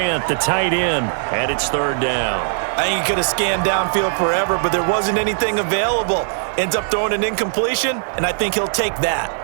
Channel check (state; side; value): silent; left; digital silence